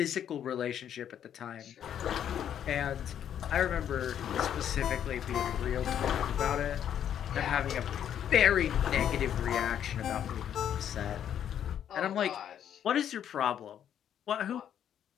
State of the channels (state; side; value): quieter; right; 9.6 dB